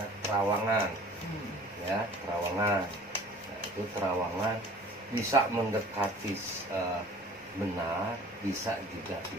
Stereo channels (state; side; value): normal; both; correlation 0.48